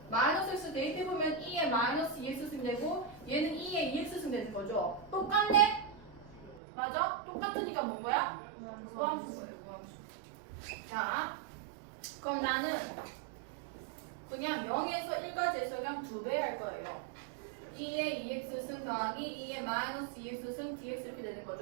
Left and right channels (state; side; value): drops out; left; at 6.6 s